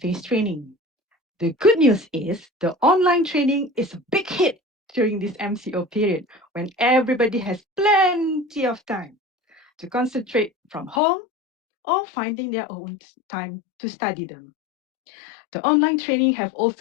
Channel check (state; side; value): drops out; right; at 11.0 s